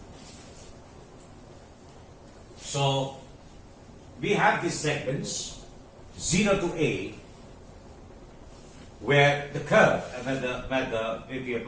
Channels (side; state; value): both; identical; correlation 1.00